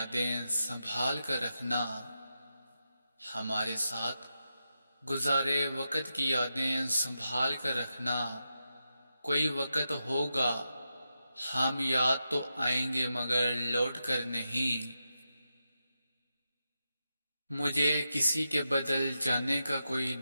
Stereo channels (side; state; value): both; inverted; correlation -0.88